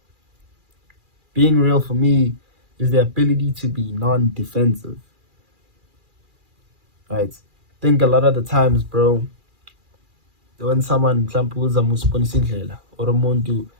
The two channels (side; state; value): left; late; 2.4 ms